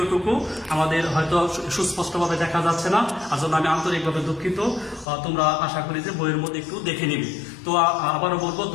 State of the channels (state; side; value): drops out; right; at 5.1 s